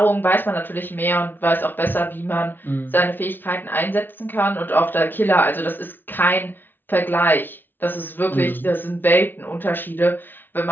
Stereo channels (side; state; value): right; late; 0.095 ms